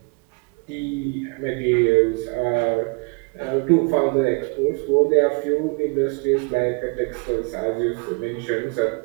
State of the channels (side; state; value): left; quieter; 33.7 dB